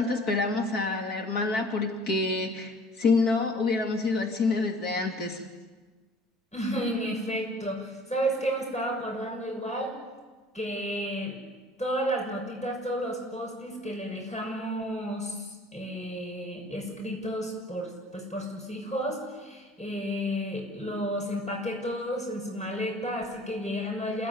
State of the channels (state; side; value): normal; both; correlation 0.50